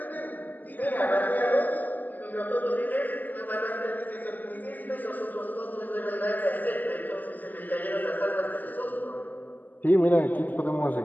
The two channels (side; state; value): right; late; 0.083 ms